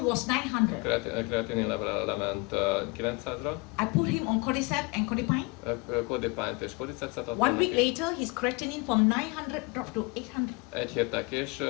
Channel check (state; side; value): quieter; right; 27.9 dB